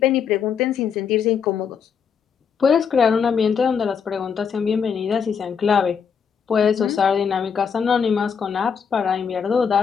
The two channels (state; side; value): quieter; right; 6.8 dB